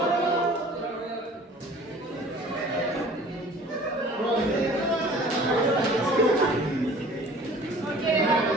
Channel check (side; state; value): both; normal; correlation 0.48